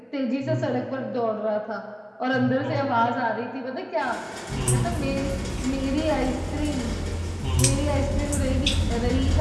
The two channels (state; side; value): identical; both; correlation 1.00